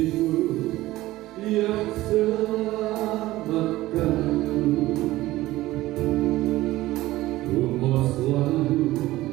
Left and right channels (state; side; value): quieter; left; 17.0 dB